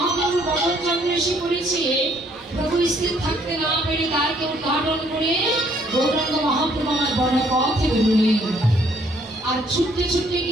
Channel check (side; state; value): both; normal; correlation 0.65